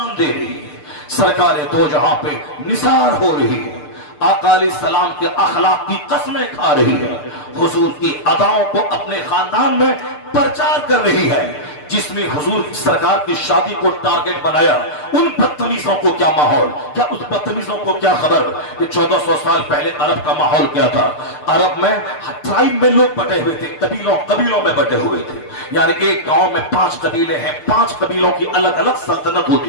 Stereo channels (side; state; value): right; late; 6.7 ms